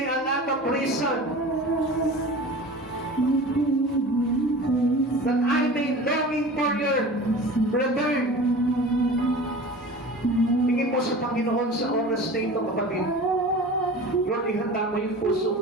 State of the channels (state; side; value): normal; both; correlation 0.37